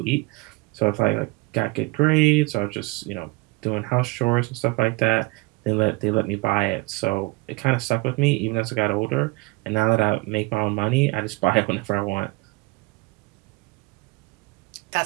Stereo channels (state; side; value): quieter; left; 23.9 dB